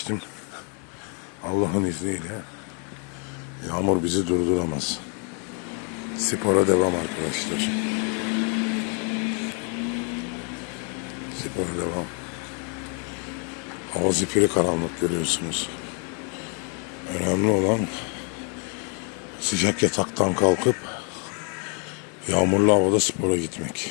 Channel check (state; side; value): quieter; right; 39.1 dB